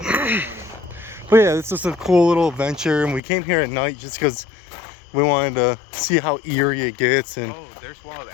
that. But yeah, it's just a cool little adventure, and we came here at night just because we wanted to see how eerie it gets. And Oh, there's wild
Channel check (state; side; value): drops out; right; at 3.2 s